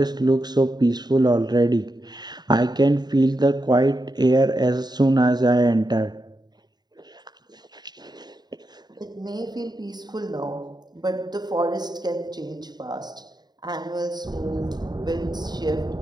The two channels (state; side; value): late; left; 0.20 ms